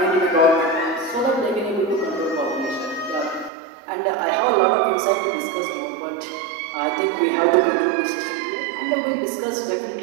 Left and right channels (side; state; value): left; drops out; at 3.5 s